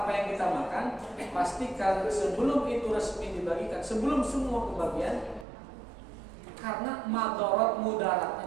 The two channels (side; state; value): left; drops out; at 5.5 s